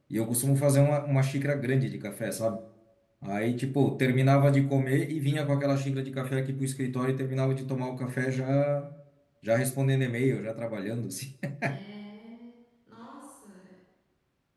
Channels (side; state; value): both; identical; correlation 1.00